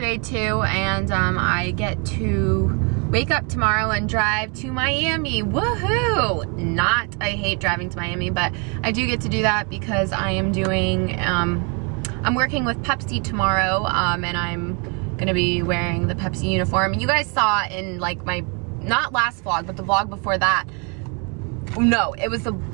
too, and I get to wake up tomorrow and drive to Miami. Woohoo! I hate driving to Miami, but I do get to do that because I am doing, I'm working with Pepsi tomorrow, and I'm gonna be wearing the Pepsi uniform. You guys saw in like my, not last vlog, but the vlog before that. No, it was the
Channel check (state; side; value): quieter; left; 34.1 dB